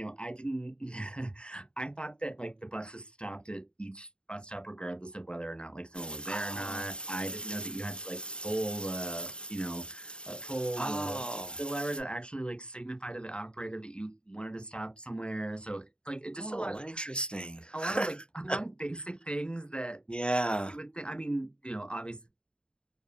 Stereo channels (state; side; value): late; right; 0.051 ms